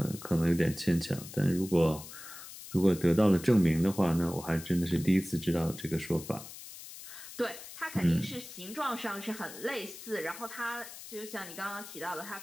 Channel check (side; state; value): left; noise; hiss, 14 dB below the sound